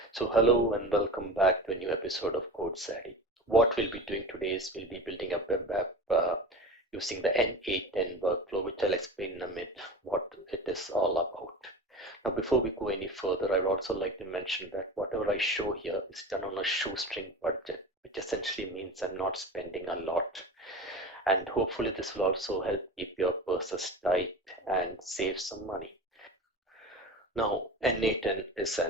So hello and welcome back to a new episode of Code Savvy. What we'll be doing today is we'll be building a web app using the n8n workflow, which I'll explain in a minute what it is all about. Now, before we go any further, I would also like to mention that whatever I show here is done on a shoestring budget, which essentially means I'm not spending a lot. And hopefully this will also help keep your purses tight and save some money. Now, n8n is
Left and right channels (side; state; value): both; normal; correlation 0.31